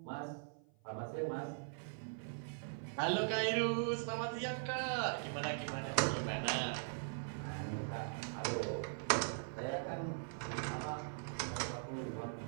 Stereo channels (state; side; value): silent; left; 50 dB below the other